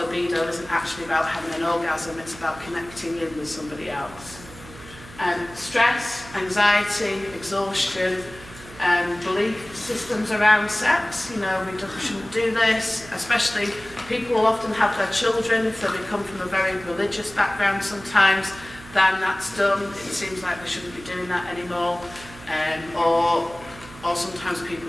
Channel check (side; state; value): right; noise; hum, 18 dB below the sound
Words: libido isn't actually about having an orgasm, it's about connecting in with somebody else. Stress, anxiety, exhaustion, belief systems around sex, we shouldn't do this, especially people will often have their children, if they come from a very religious background sometimes, then that's done, it seems like they shouldn't be doing that anymore, or sometimes